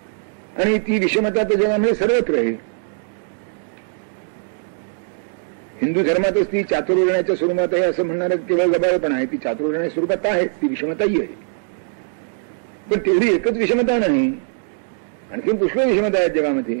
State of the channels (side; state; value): left; silent; digital silence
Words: आणि ती विषमता तर जगामध्ये सर्वत्र आहे. हिंदू धर्मातच ती चातुर्वर्ण्याच्या स्वरूपात आहे असं म्हणणारं केवळ गबाळपण आहे. ती चातुर्वर्ण्याच्या स्वरूपात आहेच, ती विषमताही आहे, पण तेवढी एकच विषमता नाही, आणखी पुष्कळ विषमता आहेत